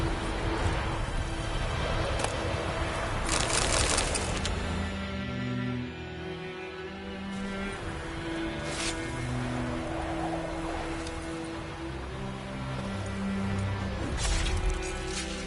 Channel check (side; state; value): both; identical; correlation 1.00